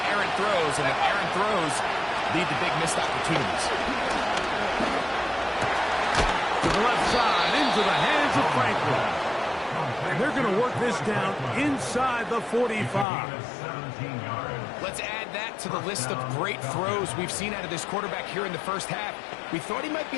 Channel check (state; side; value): drops out; right; at 13.1 s